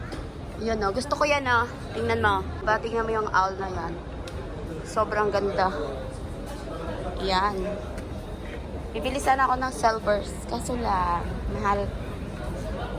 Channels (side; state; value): both; identical; correlation 1.00